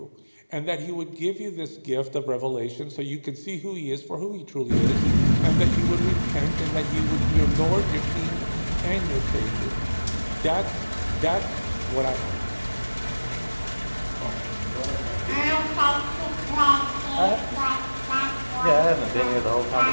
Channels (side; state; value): both; inverted; correlation -1.00